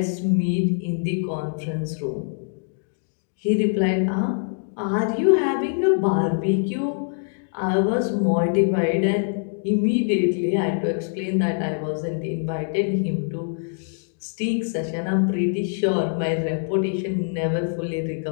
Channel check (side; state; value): right; silent; digital silence